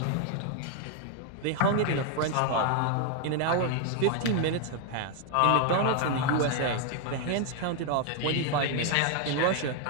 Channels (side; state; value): both; different; correlation 0.00